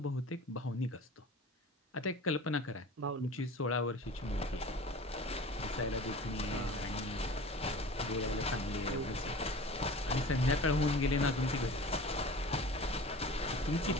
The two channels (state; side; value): normal; both; correlation 0.39